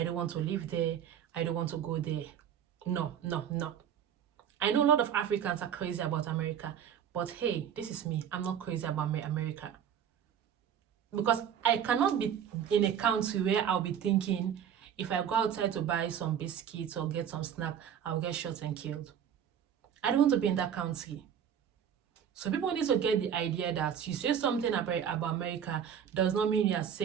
don't want to live there. I don't want to go there. No. I know a lot of Africans are crazy about America, but hey, this is me. I'm not crazy about America. Because I cannot be in a country where I'll be thinking, if I go outside to buy some biscuits or get some snack, I'll get shot and killed. I don't want to be in that country. So people need to get the idea that you say something about America does not mean you are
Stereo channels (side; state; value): left; quieter; 8.7 dB